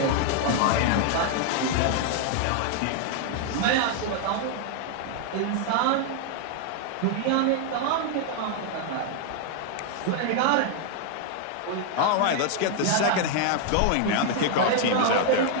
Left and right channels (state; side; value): different; both; correlation 0.00